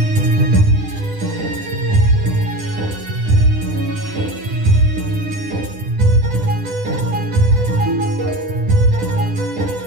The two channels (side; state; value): left; late; 10 ms